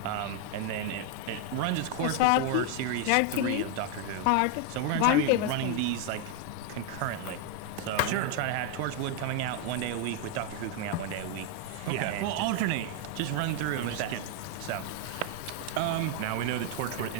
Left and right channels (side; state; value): both; different; correlation 0.01